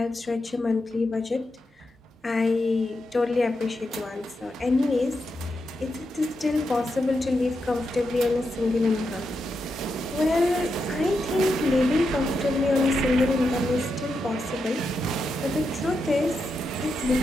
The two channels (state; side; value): normal; both; correlation 0.85